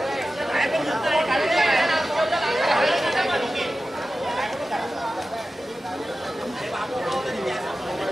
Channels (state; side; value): normal; both; correlation 0.94